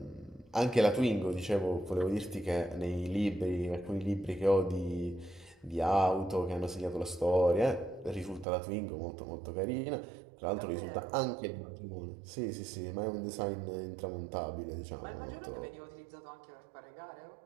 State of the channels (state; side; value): drops out; left; at 8.5 s